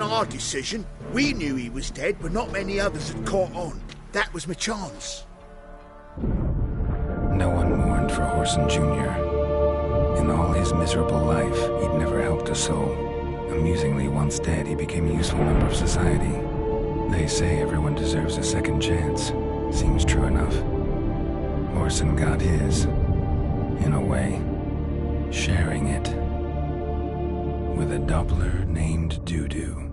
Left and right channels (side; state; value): both; identical; correlation 1.00